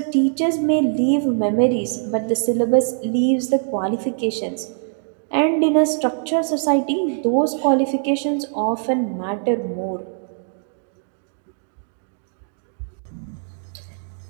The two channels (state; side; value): silent; left; digital silence